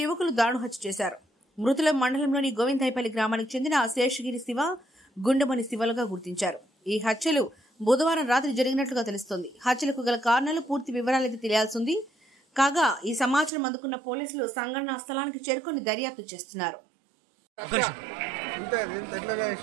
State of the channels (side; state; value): left; drops out; at 13.5 s